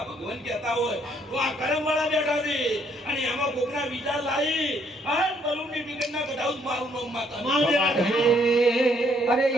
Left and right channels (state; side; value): normal; both; correlation 0.68